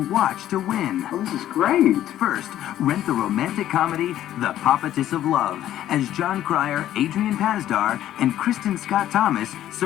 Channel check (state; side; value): quieter; right; 12.4 dB